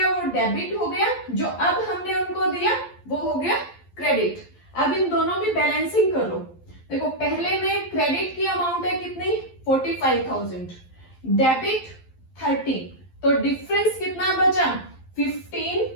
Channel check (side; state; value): right; late; 11 ms